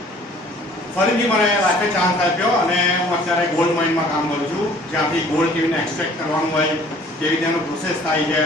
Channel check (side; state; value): both; normal; correlation 0.53